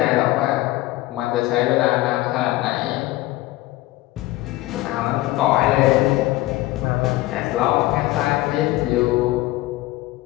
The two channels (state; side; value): quieter; right; 17.9 dB